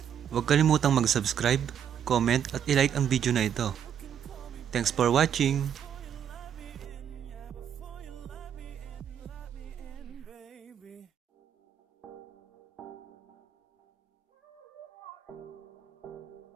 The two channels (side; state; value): left; quieter; 8.9 dB